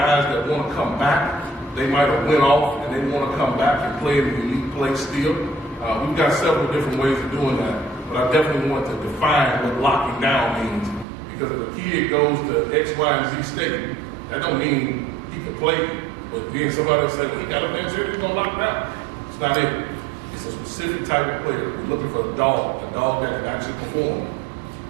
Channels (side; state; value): left; drops out; at 11.1 s